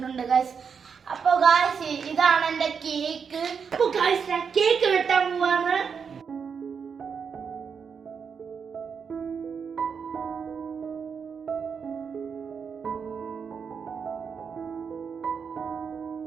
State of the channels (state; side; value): quieter; left; 6.3 dB